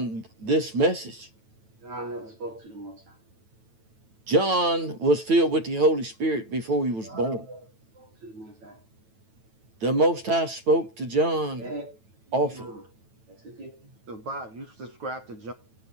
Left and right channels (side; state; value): left; late; 9.1 ms